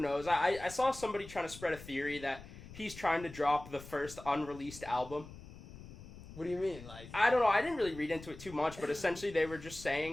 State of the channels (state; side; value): noise; left; rumble, 16 dB below the sound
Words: I saw somebody trying to spread a theory that he's trying to drop the first unreleased album. What do you mean? I don't know. I didn't really read into it too much, but essentially they were just